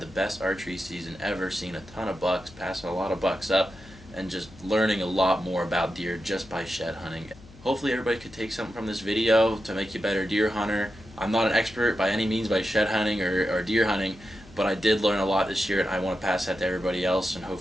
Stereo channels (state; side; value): noise; left; hum, 22 dB below the sound